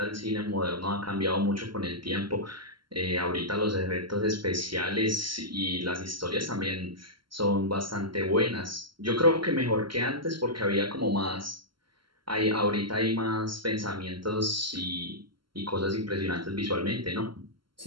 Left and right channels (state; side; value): late; left; 0.73 ms